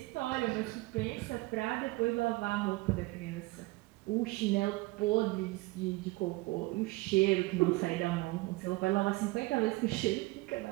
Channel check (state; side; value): quieter; left; 22.2 dB